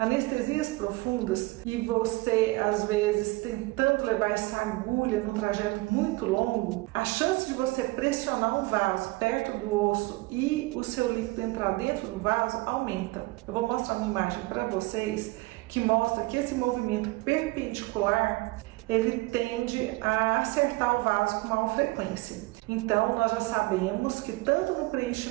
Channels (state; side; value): quieter; left; 22.4 dB